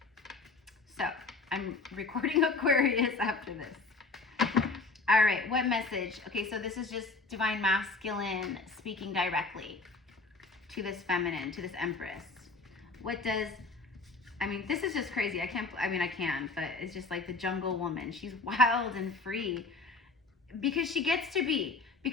So I'm recording Aquarius after this. All right, what message? Okay, so this is just divine masculine speaking directly to this feminine, to this Empress. What does, I mean, this is just crazy. I can, but it's just like the jungle woman. She's wild and free because she gets to be,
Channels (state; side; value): quieter; right; 3.8 dB